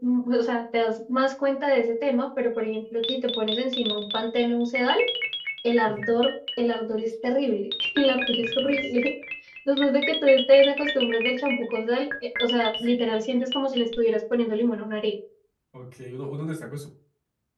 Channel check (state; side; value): identical; both; correlation 1.00